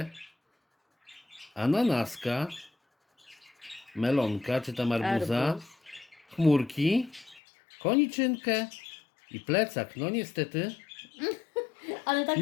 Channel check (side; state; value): right; drops out; at 7.4 s